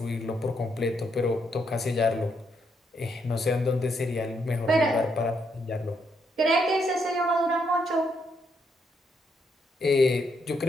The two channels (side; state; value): both; normal; correlation 0.76